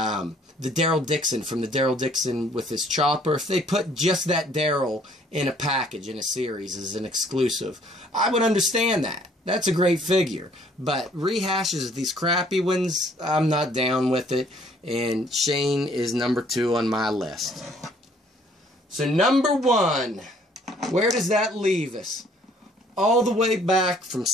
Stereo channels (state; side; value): normal; both; correlation 0.61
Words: Daryl Dixon from the Daryl Dixon with his chopper. If they put just that Daryl in a package in a series as an exclusive, I would understand that. That's a great figure. But rehashes of these crappy ones, I'm not down with it. And Shane is number 2 on my list. So number 1, where does that leave us? All the way back from